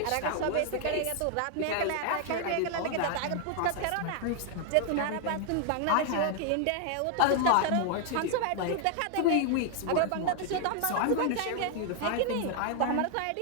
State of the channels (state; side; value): different; both; correlation 0.00